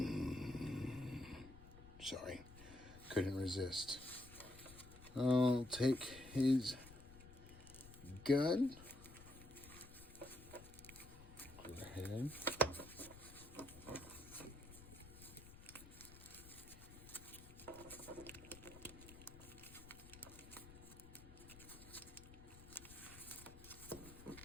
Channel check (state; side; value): noise; left; rumble, 16 dB below the sound